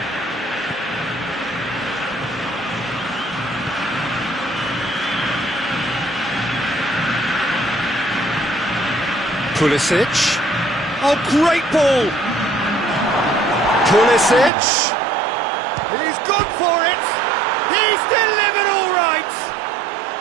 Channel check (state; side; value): drops out; left; at 14.5 s